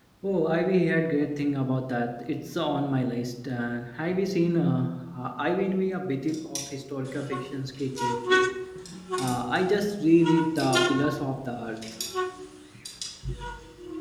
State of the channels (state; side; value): identical; both; correlation 1.00